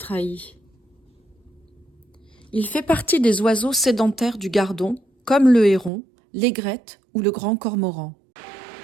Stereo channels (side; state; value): left; drops out; at 5.9 s